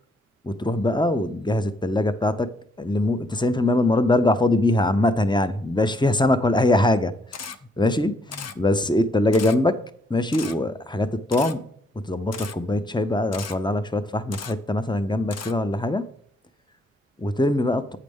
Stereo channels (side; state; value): both; normal; correlation 0.70